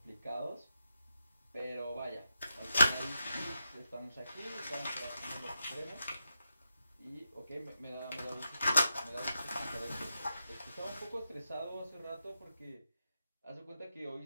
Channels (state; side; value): inverted; both; correlation -0.87